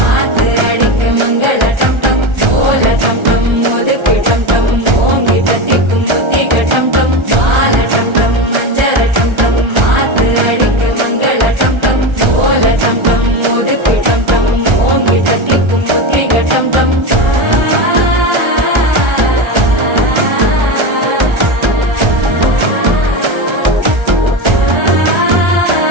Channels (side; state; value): left; late; 1.3 ms